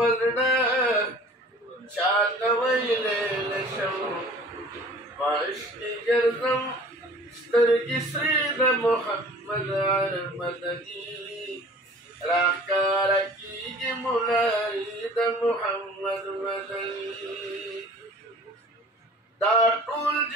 چاته ویلې نشم واشتي ګرځم سترګې سرې د محمد مدني راښکاره کېږي مناري د محمد مدني دا ټول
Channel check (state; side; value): normal; both; correlation 0.47